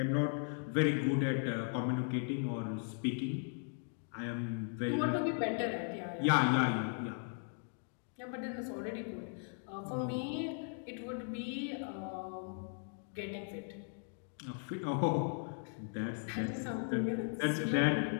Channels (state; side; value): silent; right; 53 dB below the other